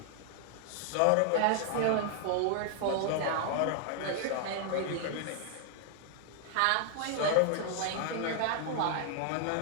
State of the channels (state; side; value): different; both; correlation 0.00